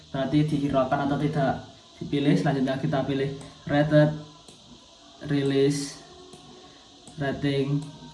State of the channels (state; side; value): identical; both; correlation 1.00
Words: berarti dihiraukan atau tidak dipilih. Selanjutnya kita pilih rated, release, rating,